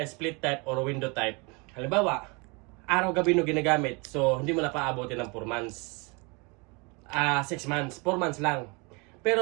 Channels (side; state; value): left; quieter; 29.7 dB